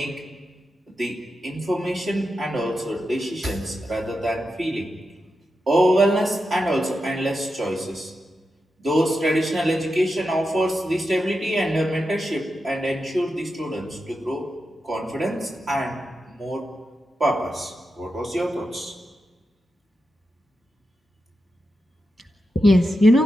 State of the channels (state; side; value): normal; both; correlation 0.89